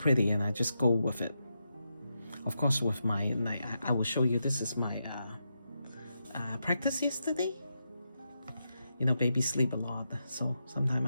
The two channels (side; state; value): both; inverted; correlation -0.86